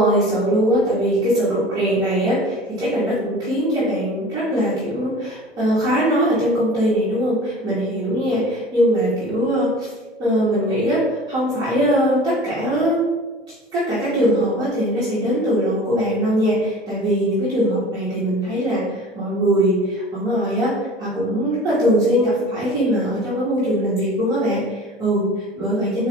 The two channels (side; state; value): both; normal; correlation 0.42